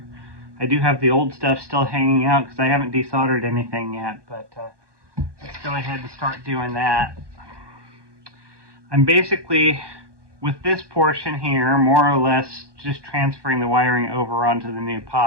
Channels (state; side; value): late; left; 1.2 ms